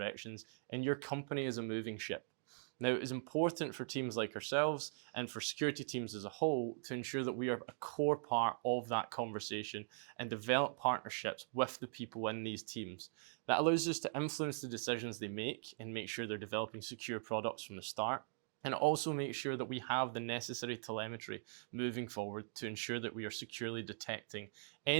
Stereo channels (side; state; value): left; silent; digital silence